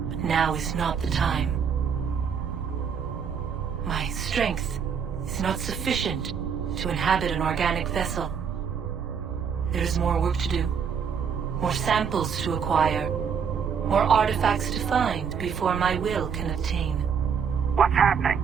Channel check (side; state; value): left; quieter; 6.9 dB